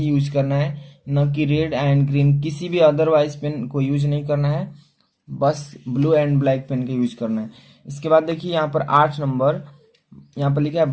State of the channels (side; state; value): both; identical; correlation 1.00